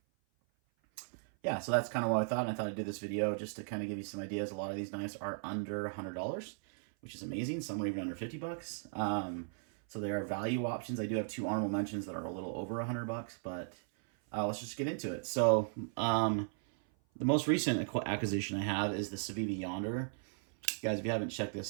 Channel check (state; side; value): silent; left; 53 dB below the other